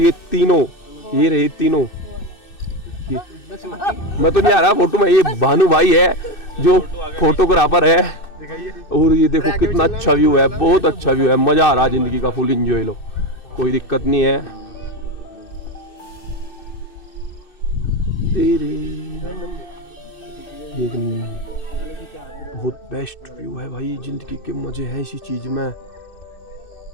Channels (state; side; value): late; right; 2.6 ms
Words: तीनों, ये रहे तीनों, मैं तो नहीं आ रहा फोटो में, ये भानु भाई है जो फोटोग्राफर है। और ये देखो कितना अच्छा व्यू है, बहुत अच्छा व्यू है, मजा आ रहा है जिंदगी का, फुल एंजॉय लो, कोई दिक्कत नहीं है। बहुत बेस्ट व्यू है भाई, जिंदगी के मजे हैं इसी चीज में।